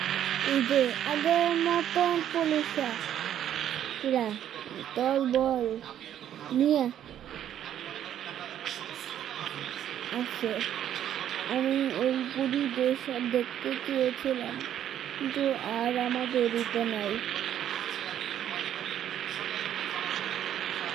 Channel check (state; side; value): quieter; left; 10.6 dB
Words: আগের মতন পুলিশরা দল বল নিয়ে আছে। আমি ওই পুরী দেশ দেখতে চেয়েছিলাম, কিন্তু আর আমাদের দিতে নাই।